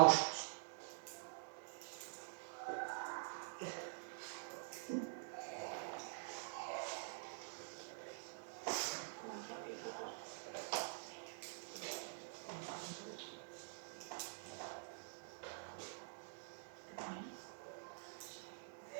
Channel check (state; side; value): silent; left; digital silence